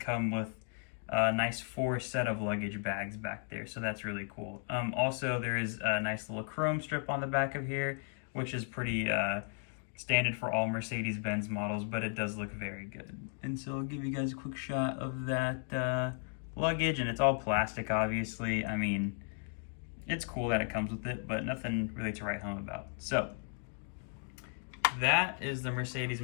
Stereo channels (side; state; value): right; silent; 54 dB below the other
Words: with a nice 4 set of luggage bags back there, so that's really cool. Also, there is a nice little chrome strip on the back of here, which is pretty standard for all Mercedes-Benz models, but it does look very good. And so I'll give you guys a quick shot of that luggage, and it's all plastic, obviously. I mean, it's cool that it comes with it, but nothing really to write home about. So that is the Mercedes